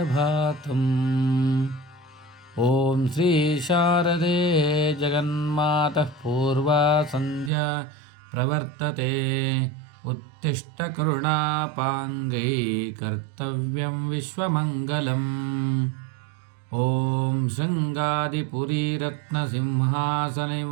ఓం శ్రీ శారదే జగన్మాతః పూర్వా సంధ్యా ప్రవర్తతే. ఉత్తిష్ట కరుణాపాంగై కర్తవ్యం విశ్వమంగళం. ఓం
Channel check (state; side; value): drops out; left; at 7.5 s